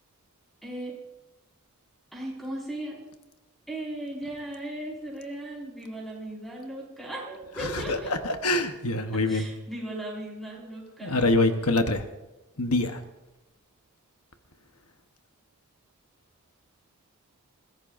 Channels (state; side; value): normal; both; correlation 0.24